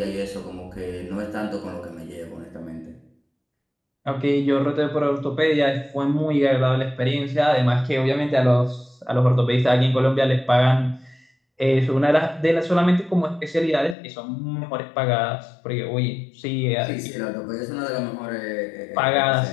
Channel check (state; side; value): drops out; right; at 14.0 s